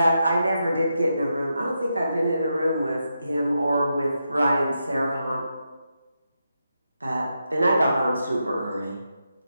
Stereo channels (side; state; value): both; inverted; correlation -0.85